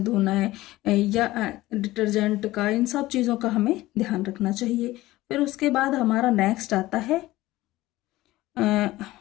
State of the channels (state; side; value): quieter; right; 17.5 dB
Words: धोना है या डिटर्जेंट का, इन सब चीज़ों का हमें ध्यान रखना चाहिए। फिर उसके बाद हमारा नेक्स्ट आता है